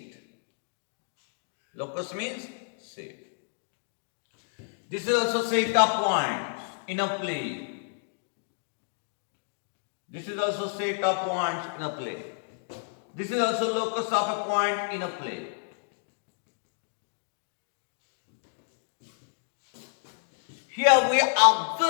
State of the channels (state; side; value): silent; right; digital silence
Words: Locus means seat. This is also set of points in a plane. This is also set of points in a plane. This is also locus of a point in a plane. Here we